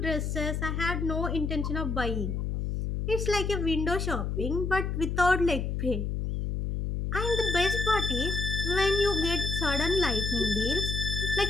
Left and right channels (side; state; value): left; noise; hum, 2 dB below the sound